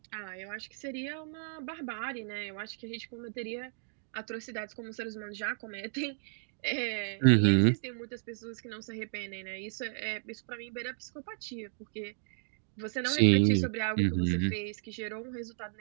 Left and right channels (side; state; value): left; silent; digital silence